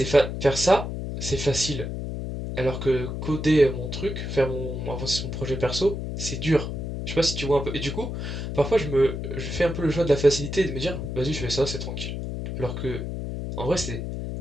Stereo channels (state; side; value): noise; left; hum, 5 dB below the sound